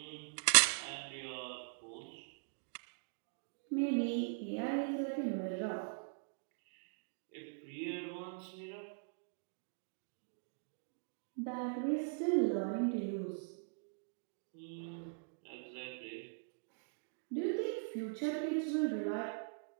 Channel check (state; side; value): silent; left; digital silence